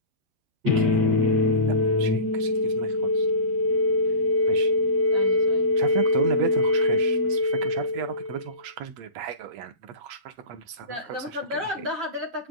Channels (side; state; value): left; late; 8.4 ms